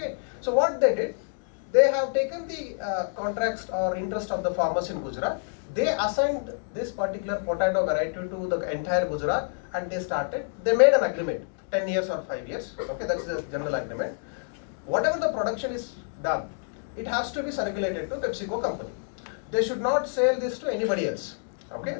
so what they did, they have taken the contracts or interest of the farmers in Gujarat. They assigned this particular potato variety to the entire Gujarat, and they made an agreement, 10 years or 5 years. Okay, that's the general agreement. Whatever the production is done, it has to be circulated to PepsiCo company. They should not sell this to anybody else. Okay,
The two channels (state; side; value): silent; right; digital silence